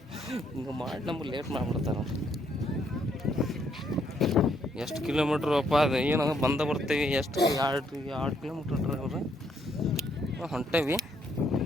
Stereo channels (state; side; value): normal; both; correlation 0.72